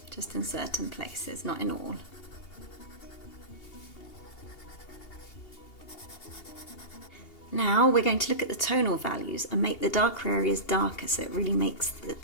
Just in certain places, not in all. Now we're going to look at the tonal values and make the darker areas darker so it really makes the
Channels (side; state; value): right; late; 2.8 ms